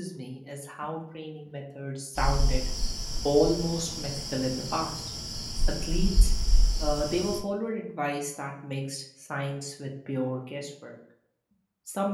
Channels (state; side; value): identical; both; correlation 1.00